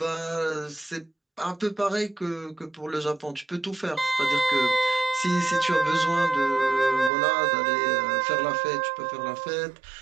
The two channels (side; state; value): left; drops out; at 7.1 s